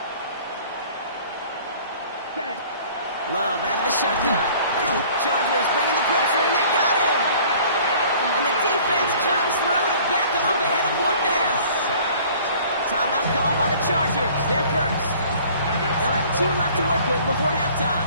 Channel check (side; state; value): both; inverted; correlation -0.51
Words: Set. Love out of the shotgun. Chargers bringing the pressure, and they got him. And the defense comes through to back them up ahead of 4th down. Timeout called by the Chargers. They're first. They'll have 2 left to work with before